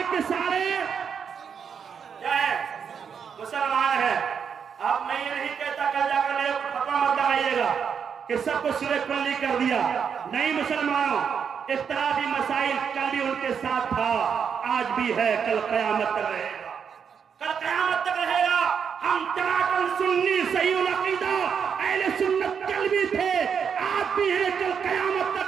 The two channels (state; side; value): quieter; left; 7.0 dB